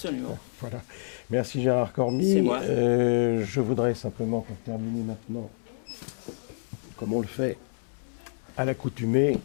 Voilà. Merci Gérard Cormy. C'est moi. Je voudrais simplement, pour terminer maintenant, comme on le fait à l'accoutumée,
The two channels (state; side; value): silent; right; 59 dB below the other